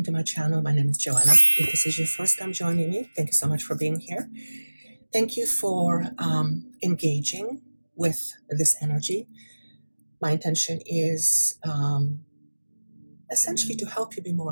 to my channel. My name is Joanna. If this is your first time joining me, thank you so much for being here. Thank you for engaging with this energy. My intention is essentially to help you be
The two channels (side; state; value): both; inverted; correlation -1.00